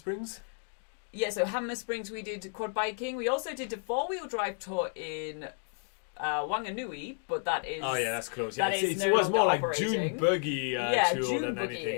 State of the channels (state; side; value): silent; right; 57 dB below the other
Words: Yeah, so Hammer Springs we did quad biking. We also did a 4-wheel drive tour in Wanganui, but that is... Oh yeah, that's close. Yeah, that is it no was more longer like June operating. buggy tour June than anything. Yeah,